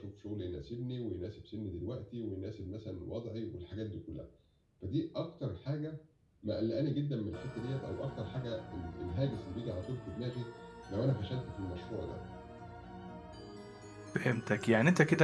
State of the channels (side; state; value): both; identical; correlation 1.00